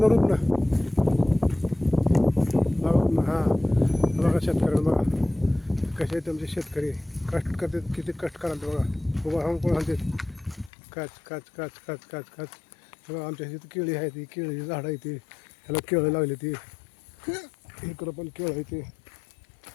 बघा हां बघा शेतकऱ्याला बघा कसे आहेत तुमचे शेतकरी कष्ट करतात किती कष्ट कराल बघा उभा राहून कोण आणतात काच काच काच काच काच काच बघा आमच्या इथे केळी आहे ती केळीची झाडं आहे ती ह्याला केळं लागली ती इकडं पण केळं आहे ते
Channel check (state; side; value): drops out; right; at 10.7 s